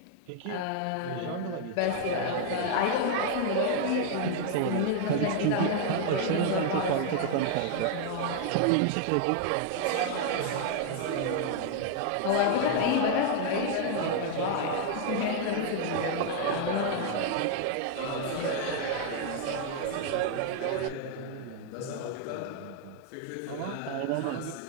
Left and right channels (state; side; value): different; both; correlation 0.00